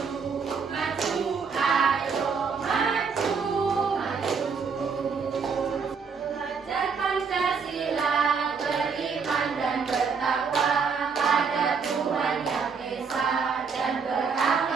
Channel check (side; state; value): left; quieter; 5.6 dB